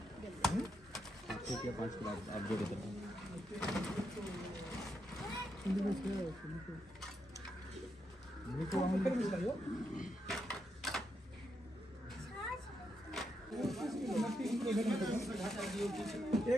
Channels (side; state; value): both; normal; correlation 0.82